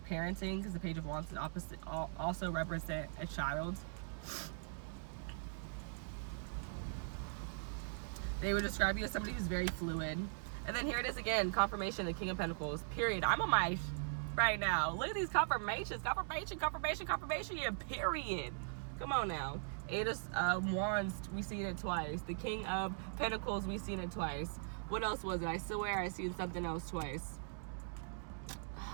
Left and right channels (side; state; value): left; silent; digital silence